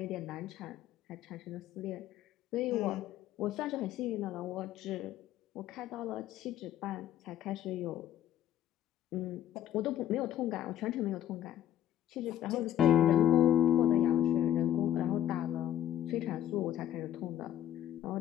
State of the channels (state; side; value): quieter; right; 11.6 dB